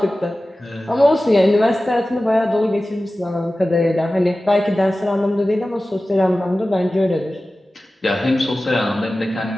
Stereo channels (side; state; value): both; normal; correlation 0.96